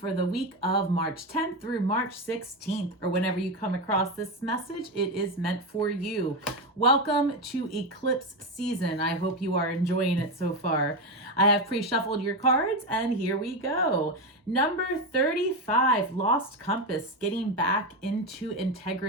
the week of March 10th through March 16th, or whenever you come across this message, it is meant for you. Welcome to eclipse season. I hope you are enjoying it so far. I have pre-shuffled your cards, and here we go. Number 35, Lost Compass, getting back into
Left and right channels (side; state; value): both; normal; correlation 0.13